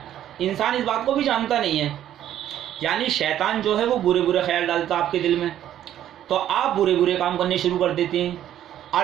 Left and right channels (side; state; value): left; quieter; 11.4 dB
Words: इंसान इस बात को भी जानता नहीं है। यानी शैतान जो है वो बुरे बुरे ख्याल डालता आपके दिल में, तो आप बुरे बुरे काम करने शुरू कर देते हैं।